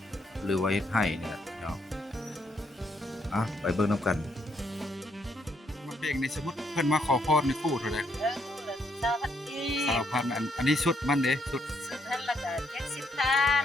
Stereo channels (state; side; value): normal; both; correlation 0.74